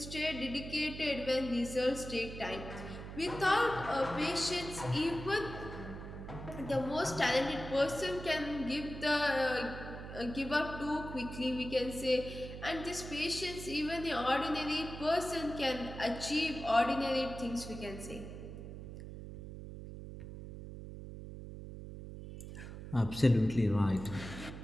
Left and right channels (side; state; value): right; noise; hum, 10 dB below the sound